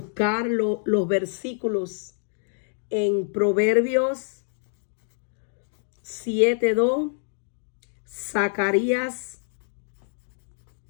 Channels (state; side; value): silent; right; digital silence